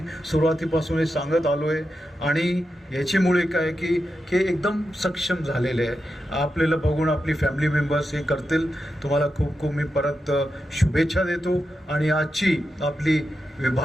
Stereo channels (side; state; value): both; normal; correlation 0.88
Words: सुरुवातीपासून हे सांगत आलो आहे आणि याच्यामुळे काय की एकदम सक्षम झालेले आहे. आपल्याला बघून आपली फॅमिली मेंबर्स हे करतील. तुम्हाला खूप खूप मी परत शुभेच्छा देतो आणि आजची आपली